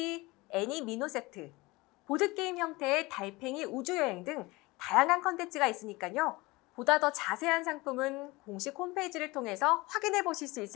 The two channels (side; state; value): right; quieter; 22.4 dB